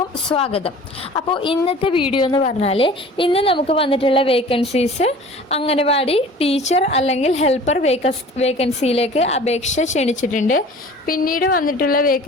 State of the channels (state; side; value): normal; both; correlation 0.44